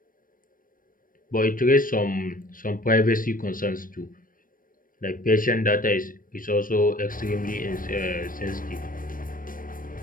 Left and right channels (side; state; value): right; late; 0.40 ms